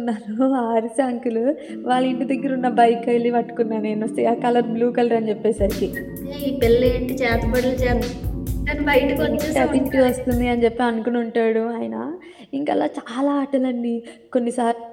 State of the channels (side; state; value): both; identical; correlation 1.00